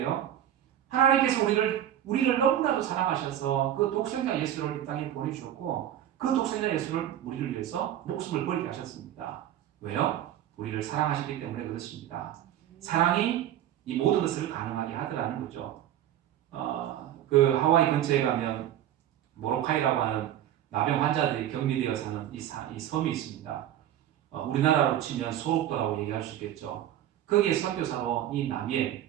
하나님께서 우리를 너무나도 사랑하셔서 그 독생자 예수를 이 땅에 보내주셨고 그 독생자 예수를 우리를 위해서 목숨을 버리게 하셨습니다. 왜요? 우리를 사랑하시기 때문에 그렇습니다. 사랑이 이 모든 것을 가능하게 하더라는 거죠. 그 하와이 근처에 가면 모로카이라고 하는 나병 환자들이 격리되어 사는 이 섬이 있습니다. 우리나라로 치면 소록도라고 얘기할 수 있겠죠. 거기에 선교사로 이 남이엘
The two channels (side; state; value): left; quieter; 11.5 dB